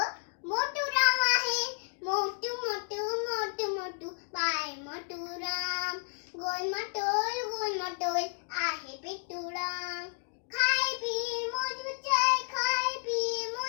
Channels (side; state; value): right; silent; 57 dB below the other